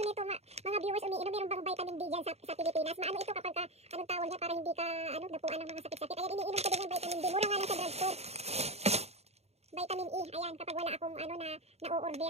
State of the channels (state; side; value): late; left; 0.31 ms